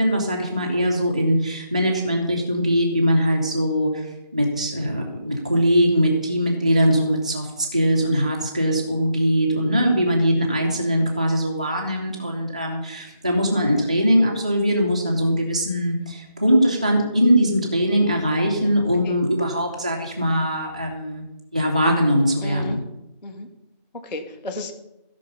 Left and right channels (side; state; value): both; inverted; correlation -0.81